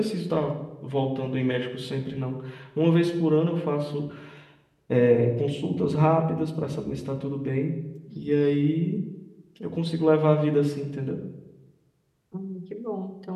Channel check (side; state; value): both; identical; correlation 1.00